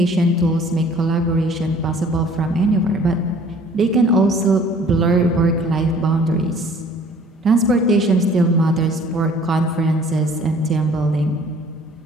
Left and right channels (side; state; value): both; normal; correlation 0.53